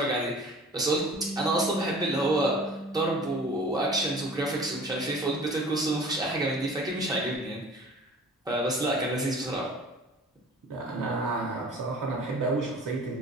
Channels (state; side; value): normal; both; correlation 0.45